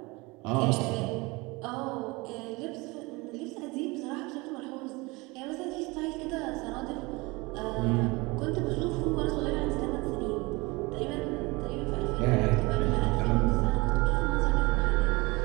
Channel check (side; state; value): left; quieter; 24.5 dB